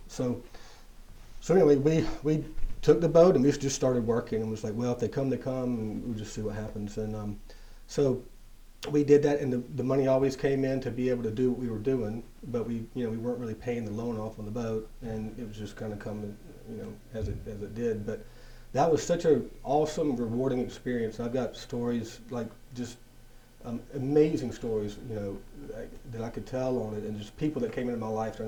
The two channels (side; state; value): both; identical; correlation 1.00